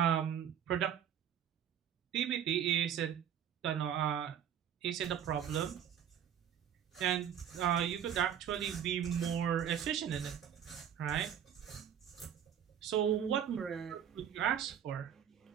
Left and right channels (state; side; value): quieter; left; 9.1 dB